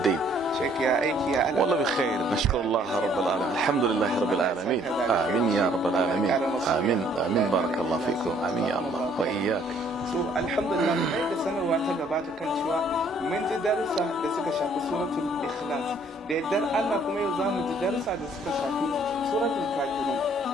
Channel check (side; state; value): both; normal; correlation 0.62